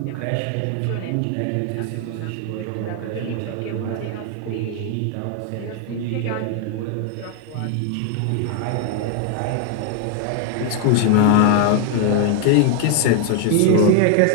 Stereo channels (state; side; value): different; both; correlation 0.00